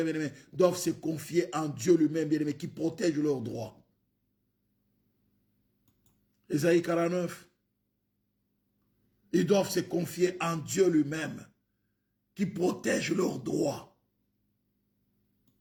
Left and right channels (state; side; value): identical; both; correlation 1.00